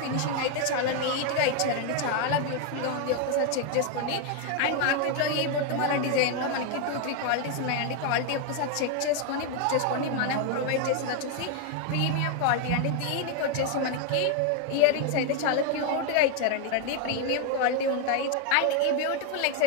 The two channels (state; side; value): different; both; correlation 0.01